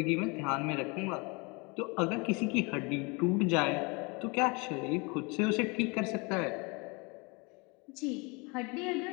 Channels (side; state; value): right; quieter; 29.0 dB